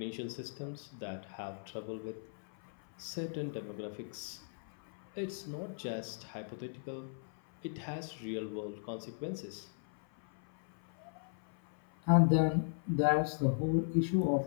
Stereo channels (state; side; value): silent; right; 53 dB below the other